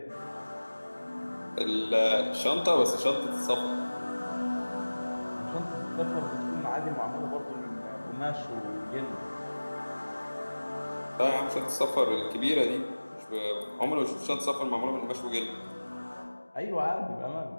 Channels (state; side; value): inverted; both; correlation -1.00